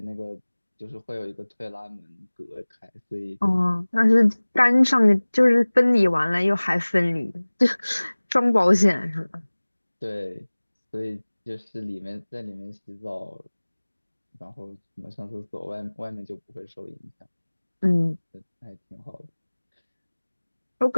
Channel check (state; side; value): inverted; both; correlation -1.00